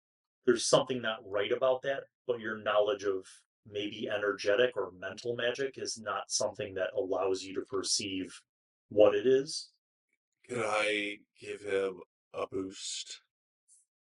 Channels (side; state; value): both; identical; correlation 1.00